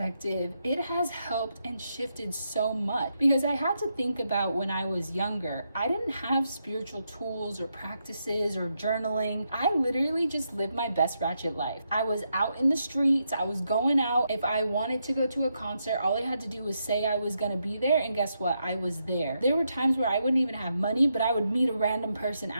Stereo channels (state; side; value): inverted; both; correlation -0.82